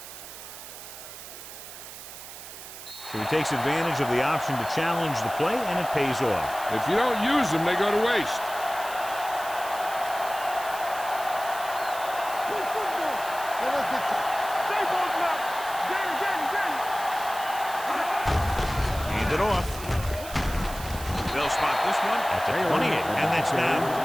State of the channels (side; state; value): right; noise; hiss, 13 dB below the sound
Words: So he takes advantage of the option to challenge the play, and it pays off. If you don't use them, they go to waste. Hand it off. They'll spot this one at the 28, and that's now